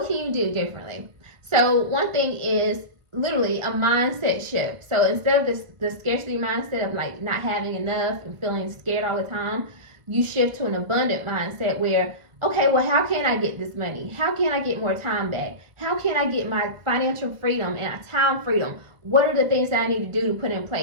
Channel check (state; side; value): late; left; 1.5 ms